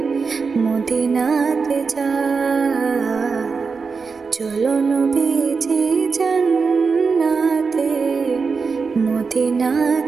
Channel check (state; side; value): quieter; left; 5.0 dB